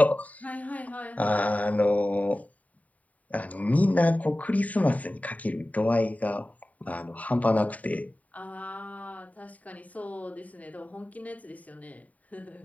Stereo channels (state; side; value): late; right; 0.071 ms